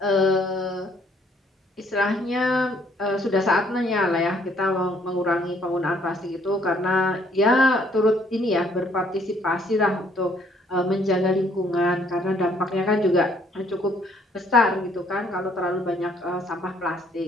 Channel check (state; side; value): normal; both; correlation 0.65